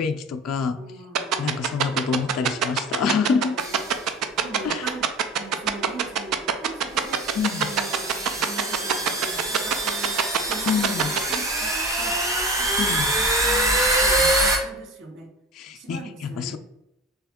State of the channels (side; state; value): both; normal; correlation 0.34